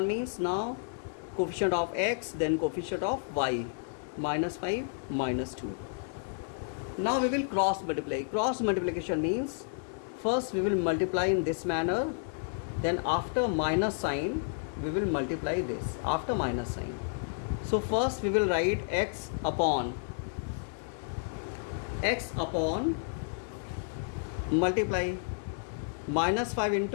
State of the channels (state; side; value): silent; right; digital silence